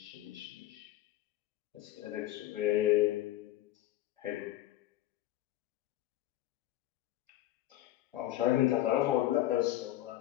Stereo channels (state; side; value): quieter; right; 14.5 dB